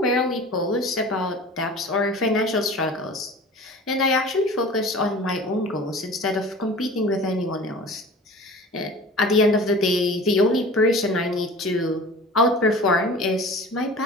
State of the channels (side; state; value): both; normal; correlation 0.41